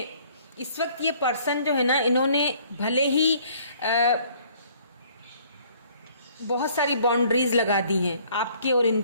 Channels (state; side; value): inverted; both; correlation -0.59